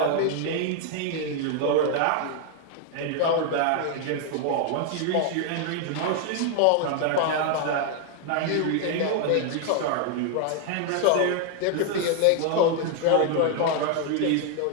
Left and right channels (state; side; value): different; both; correlation 0.00